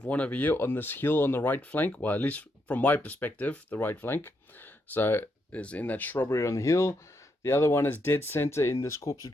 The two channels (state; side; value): normal; both; correlation 0.79